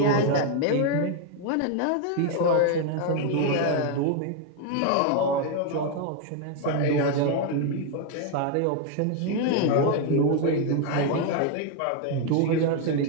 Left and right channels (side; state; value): both; different; correlation 0.01